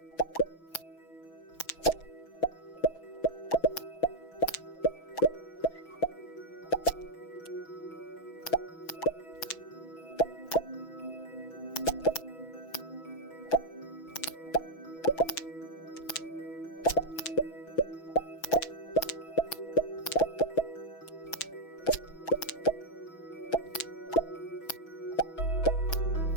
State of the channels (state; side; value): late; right; 6.1 ms